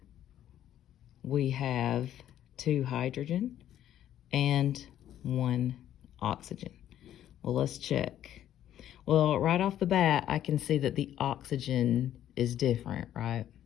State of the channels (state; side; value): quieter; right; 11.5 dB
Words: we have 2 hydrogen, and 1 oxygen. Well, let's check. Well, right off the bat, I can see that the oxygen is different, right?